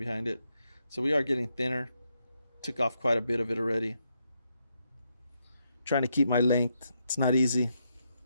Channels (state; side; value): inverted; both; correlation -0.81